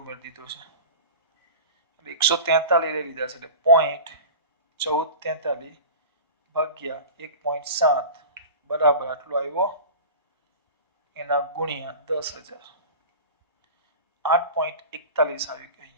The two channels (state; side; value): inverted; both; correlation -0.33